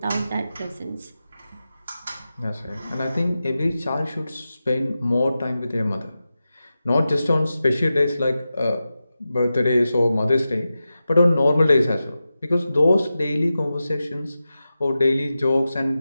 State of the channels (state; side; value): inverted; both; correlation -0.92